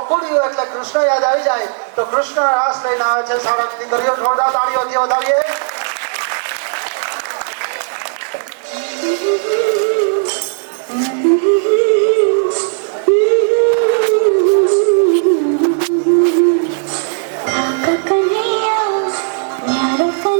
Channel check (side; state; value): left; silent; digital silence